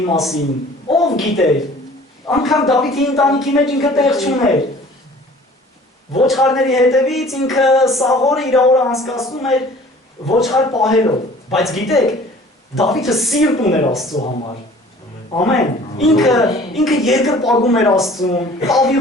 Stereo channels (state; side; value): normal; both; correlation 0.49